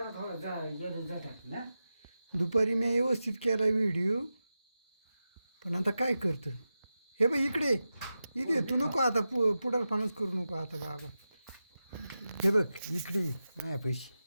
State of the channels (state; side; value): inverted; both; correlation -0.92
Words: थोडं जातात ना. दुपारी मी व्यवस्थित केला व्हिडिओ, पण आता काय करतं. हे बघ इकडे इथे तू नको आता पुढारपणाच करू नको आता बाबा. हे बघ इकडे नाही पैसे